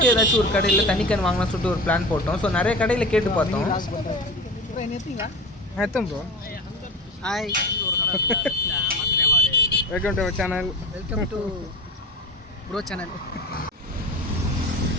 ஏதாச்சும் ஒரு கடையில் தண்ணி கேன் வாங்கலாம் சொல்லிட்டு ஒரு பிளான் போட்டோம். ஸோ நிறைய கடையில் கேட்டு பார்த்தோம். Bro hi, welcome to channel. Welcome to bro channel.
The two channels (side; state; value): both; normal; correlation 0.33